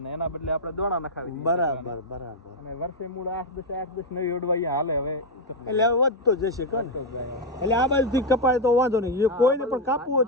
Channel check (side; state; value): both; normal; correlation 0.02